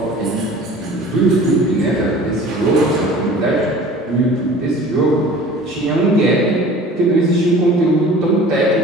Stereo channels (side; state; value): both; normal; correlation 0.44